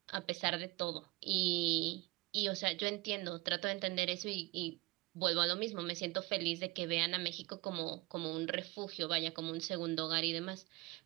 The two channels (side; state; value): left; quieter; 23.3 dB